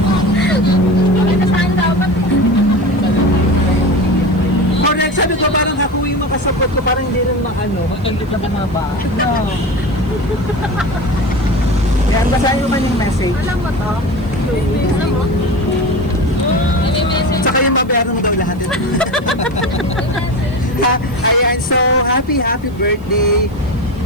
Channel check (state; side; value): noise; right; hiss, 29 dB below the sound